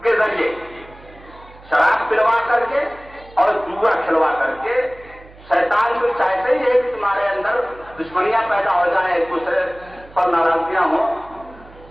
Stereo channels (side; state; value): right; noise; hum, 22 dB below the sound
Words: کے ذریعے, شراب پلوا کر کے اور جوا کھلوا کر کے. شیطان کو چاہتے ہی ہے کہ تمہارے اندر دشمنیاں پیدا ہو جائیں, ایک دوسرے پر ناراضگیاں ہوں.